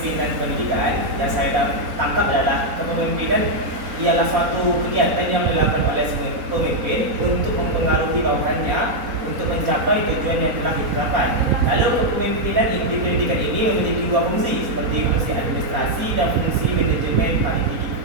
pendidikan, yang saya tangkap adalah kepemimpinan ialah suatu kegiatan yang dilakukan oleh pemimpin untuk mempengaruhi bawahannya untuk mencapai tujuan yang telah ditetapkan. Lalu kepemimpinan di pendidikan ini memiliki dua fungsi, seperti fungsi administrasi dan fungsi manajemen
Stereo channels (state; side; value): late; left; 4.0 ms